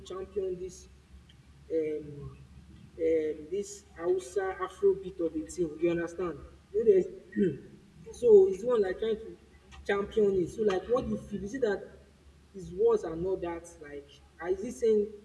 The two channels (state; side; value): identical; both; correlation 1.00